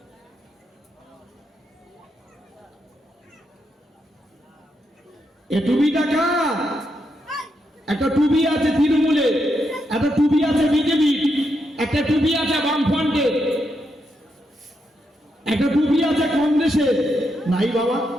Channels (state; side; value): normal; both; correlation 0.82